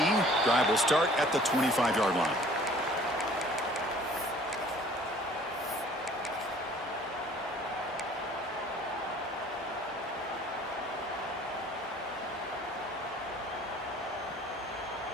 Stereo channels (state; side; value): normal; both; correlation 0.53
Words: Drive will start at the 25-yard line.